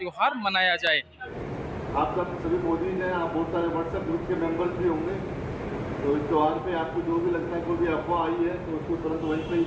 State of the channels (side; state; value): both; identical; correlation 1.00